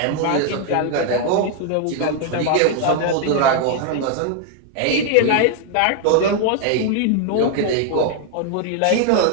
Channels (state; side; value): different; both; correlation 0.00